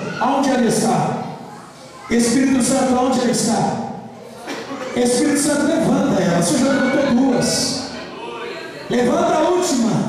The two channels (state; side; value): identical; both; correlation 1.00